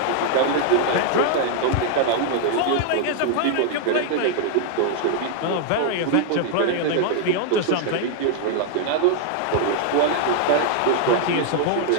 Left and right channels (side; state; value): both; different; correlation 0.00